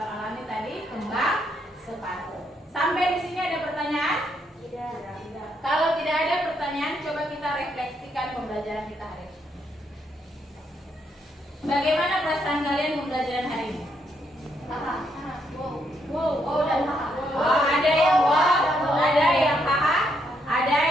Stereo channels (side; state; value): both; normal; correlation 0.76